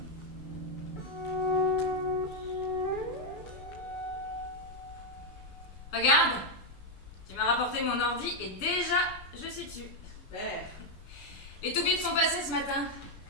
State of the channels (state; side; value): late; right; 6.8 ms